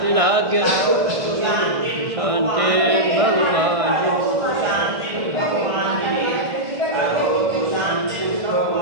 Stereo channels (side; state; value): left; late; 1.5 ms